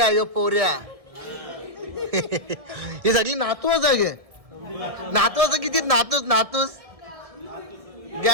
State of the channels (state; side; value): late; left; 1.6 ms